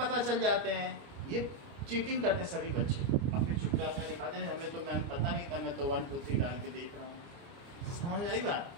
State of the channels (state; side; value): late; left; 29 ms